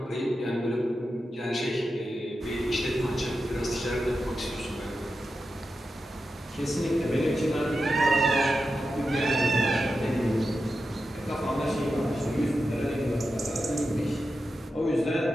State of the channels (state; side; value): normal; both; correlation 0.90